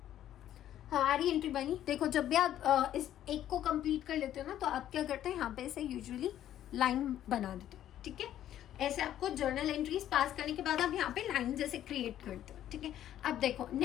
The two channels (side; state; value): right; quieter; 11.7 dB